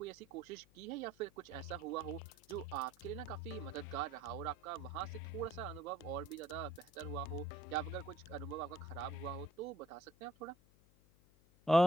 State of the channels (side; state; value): left; noise; hum, 27 dB below the sound